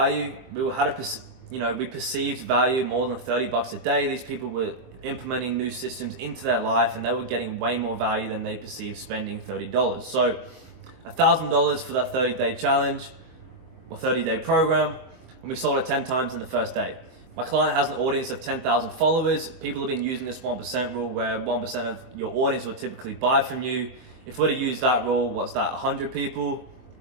We perceived value more than $30 a day. These people were implementing new systems into their life, and they were getting way more value than they perceived spending $30. So $1,000 for that 30-day challenge or 30-day program, and we sold it 10 times in the first day. My client has an audience of 10,000 followers. People have been using this 1% rule, where 1% of your audience will typically buy from you. If we're to use that rule, what's that, 100 people?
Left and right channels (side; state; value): left; late; 23 ms